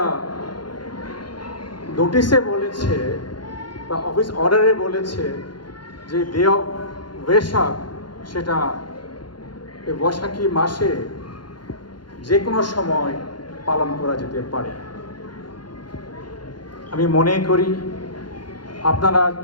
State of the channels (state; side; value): late; right; 0.71 ms